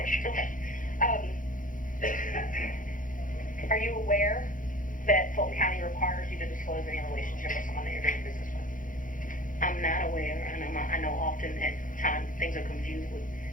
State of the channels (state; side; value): late; right; 0.39 ms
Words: Okay. Are you aware that Fulton County requires you to disclose any relationship with someone that you're doing business with? I'm not aware, and I know often at times things are confused with